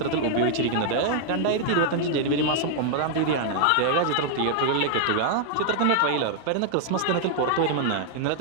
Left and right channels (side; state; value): both; different; correlation 0.00